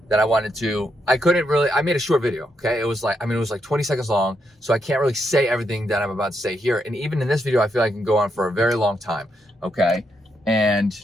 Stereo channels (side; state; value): both; normal; correlation 0.80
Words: that I made a short video, okay? It was like 20 seconds long, so I can't really say everything that I'm about to say here. And even in this video, I feel like I can go on for a very long time, okay? And